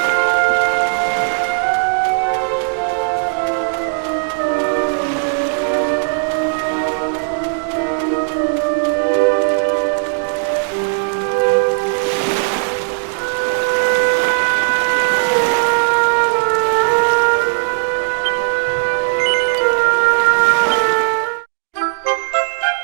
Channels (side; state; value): left; silent; 66 dB below the other